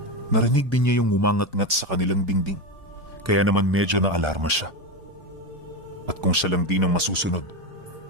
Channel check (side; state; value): both; normal; correlation 0.15